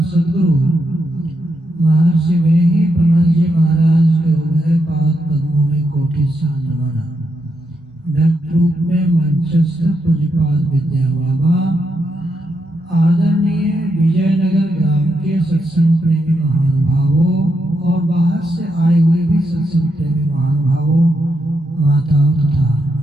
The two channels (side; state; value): both; normal; correlation 0.82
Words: गुरु महर्षि वेही ब्रह्मजी महाराज के उभय पाद पद्मों में कोटि सा नमन। व्यक्त रूप में मंचस्थ पूज्यपाद विद्या बाबा, आदरणीय विजयनगर ग्राम के सत्संग प्रेमी महानुभावों और बाहर से आए हुए भी सत्संग प्रेमी महानुभावों, माताओं तथा